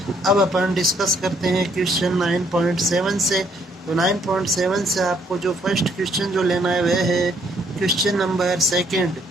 अब अपन डिस्कस करते हैं क्वेश्चन 9.7 से। तो 9.7 से आपको जो फर्स्ट क्वेश्चन जो लेना है वह है क्वेश्चन नंबर 2।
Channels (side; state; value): both; normal; correlation 0.67